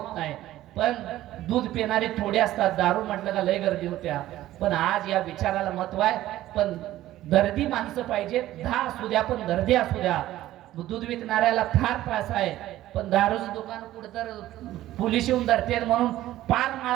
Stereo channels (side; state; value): left; quieter; 14.6 dB